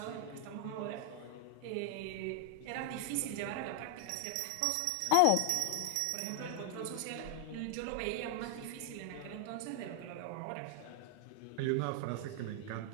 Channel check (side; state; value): both; different; correlation 0.00